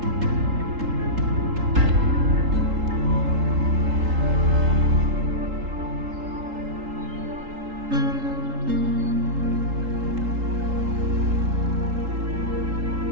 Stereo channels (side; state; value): left; late; 3.8 ms